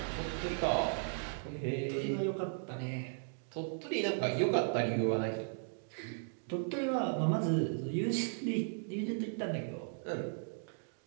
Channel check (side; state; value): left; silent; digital silence